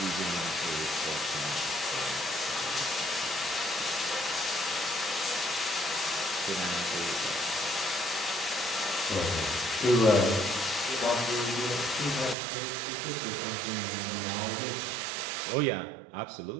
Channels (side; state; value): left; drops out; at 12.4 s